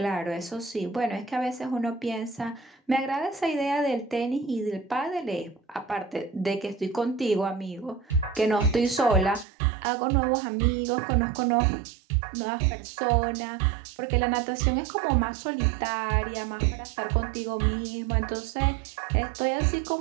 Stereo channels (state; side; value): drops out; left; at 9.5 s